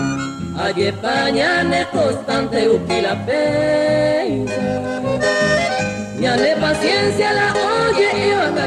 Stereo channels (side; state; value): both; identical; correlation 1.00